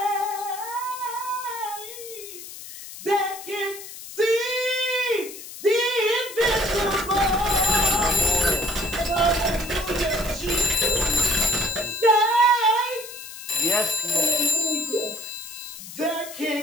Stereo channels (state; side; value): noise; left; hiss, 13 dB below the sound